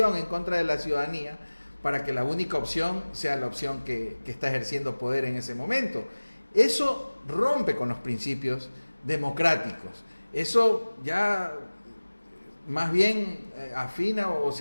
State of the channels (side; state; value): both; inverted; correlation -1.00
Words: en contra de la ciudadanía para que la única opción sea la opción que está ejerciendo poder en ese momento. Eso rompe con los principios democráticos. Eso ya más bien afina o